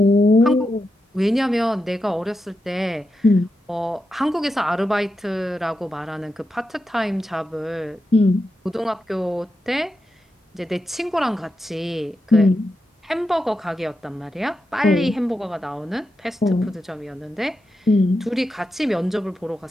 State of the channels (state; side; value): normal; both; correlation 0.88